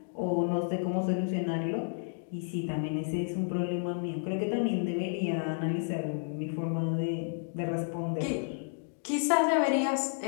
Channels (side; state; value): right; silent; digital silence